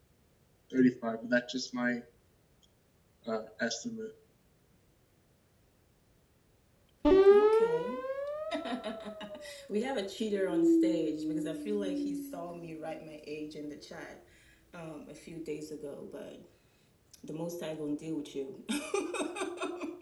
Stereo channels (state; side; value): identical; both; correlation 1.00